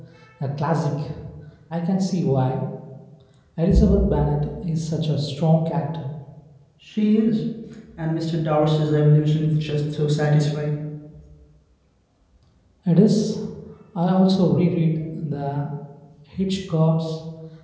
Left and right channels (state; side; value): identical; both; correlation 1.00